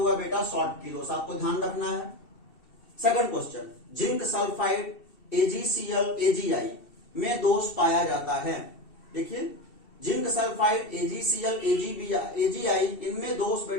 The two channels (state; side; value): late; right; 2.7 ms